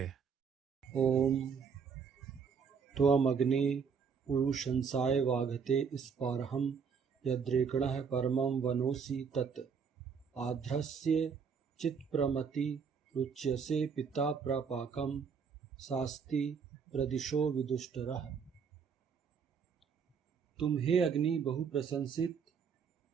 ओम त्वमग्ने पुरुषंसाय वाघते स्पारहम यद्रेकणः परमं वनोसि तत् आध्रस्य चित्प्रमति रुच्यसे पिता प्रपाकं शास्ति प्रदिशो विदुष्टरः। तुम हे अग्नि बहु प्रशंसित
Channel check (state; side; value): quieter; left; 6.3 dB